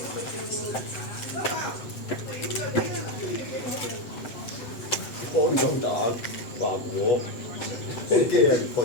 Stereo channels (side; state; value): right; late; 7.7 ms